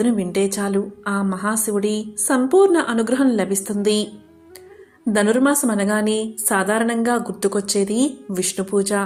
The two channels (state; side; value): identical; both; correlation 1.00